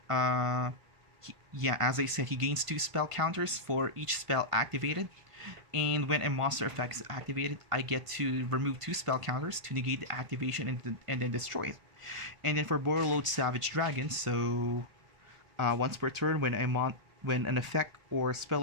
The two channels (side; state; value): left; late; 1.5 ms